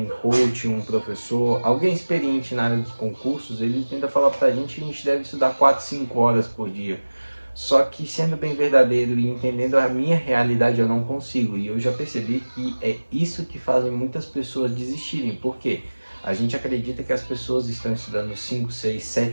coach, um professor, alguém experiente na área dos concursos, ele tenta falar pra gente que a gente deve estudar 4, 5 horas por dia. Só que sendo bem verdadeiro e entendendo a minha realidade, eu não consigo. E eu já percebi que é isso que fazem muitas pessoas desistirem. Por quê? A gente acredita que as pessoas estão estudando 5, 6,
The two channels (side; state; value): both; inverted; correlation -1.00